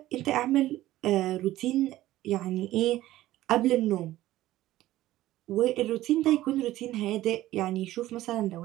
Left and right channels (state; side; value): quieter; left; 15.3 dB